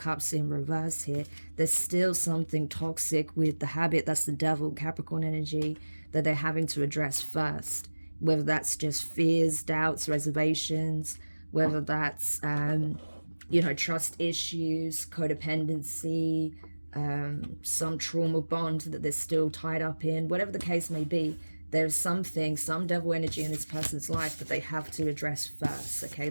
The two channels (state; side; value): inverted; both; correlation -1.00